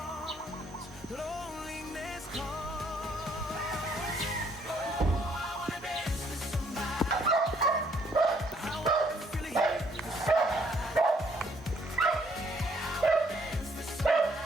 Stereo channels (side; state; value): both; normal; correlation 0.66